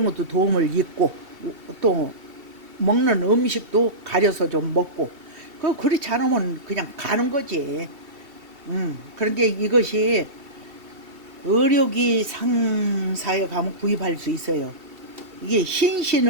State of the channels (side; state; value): left; late; 2.7 ms